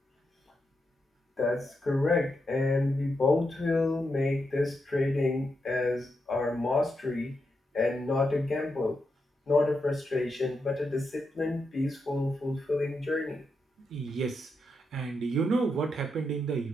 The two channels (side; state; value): both; normal; correlation 0.84